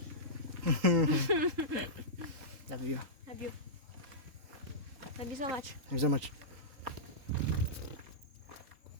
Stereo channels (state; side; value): late; left; 3.7 ms